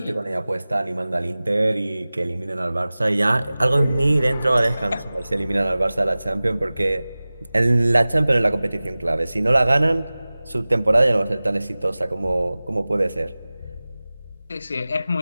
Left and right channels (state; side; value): inverted; both; correlation -0.98